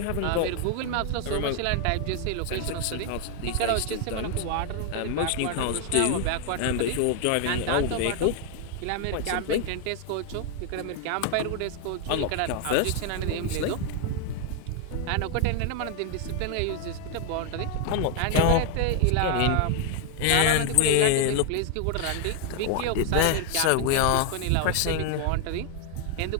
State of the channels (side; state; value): both; different; correlation 0.01